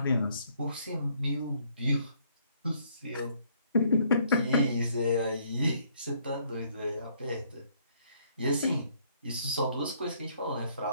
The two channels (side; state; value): both; inverted; correlation -0.66